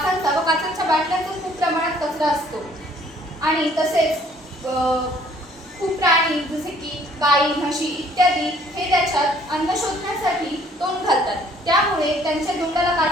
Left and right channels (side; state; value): both; normal; correlation 0.60